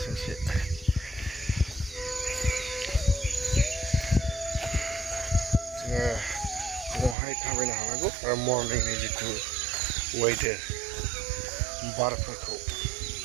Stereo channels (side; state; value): left; drops out; at 7.2 s